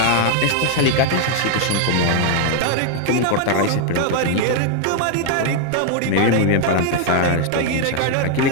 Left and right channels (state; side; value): different; both; correlation 0.00